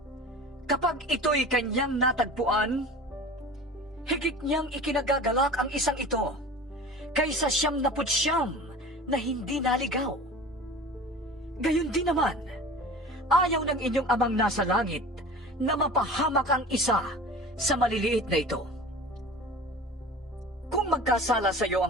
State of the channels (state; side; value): normal; both; correlation 0.38